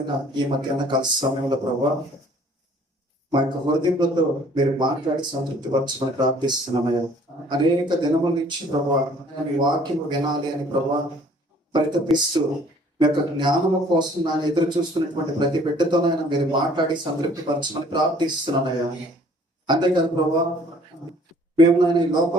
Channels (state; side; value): normal; both; correlation 0.56